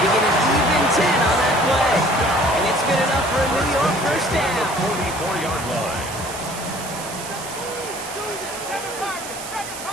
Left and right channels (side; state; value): right; noise; hiss, 11 dB below the sound